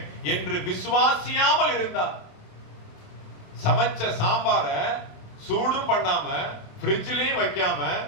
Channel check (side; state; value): right; late; 27 ms